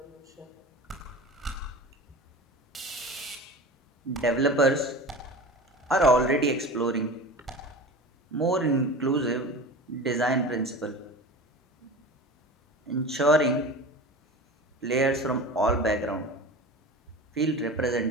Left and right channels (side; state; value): both; normal; correlation 0.33